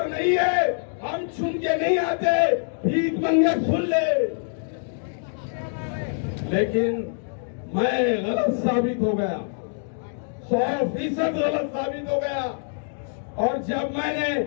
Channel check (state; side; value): silent; right; digital silence